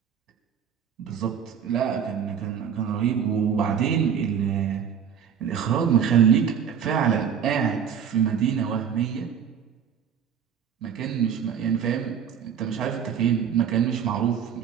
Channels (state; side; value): quieter; left; 8.0 dB